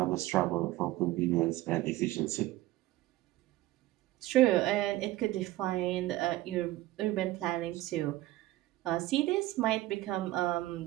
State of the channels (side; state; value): left; quieter; 16.6 dB